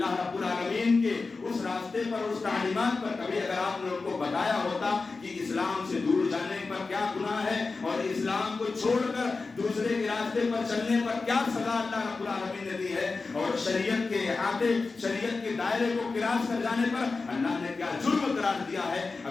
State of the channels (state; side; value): quieter; right; 4.0 dB